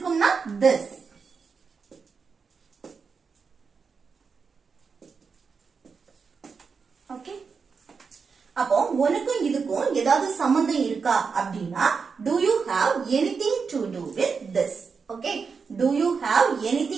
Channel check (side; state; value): left; quieter; 5.4 dB